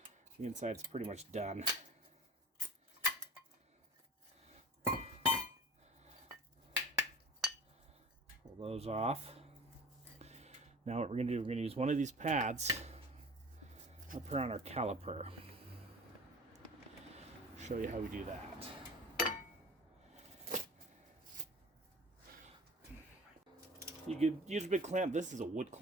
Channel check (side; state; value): both; normal; correlation 0.39